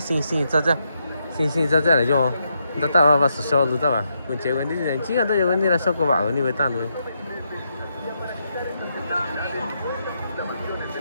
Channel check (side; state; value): both; inverted; correlation -0.81